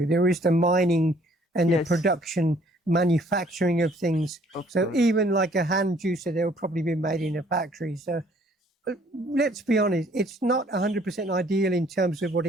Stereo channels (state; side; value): normal; both; correlation 0.61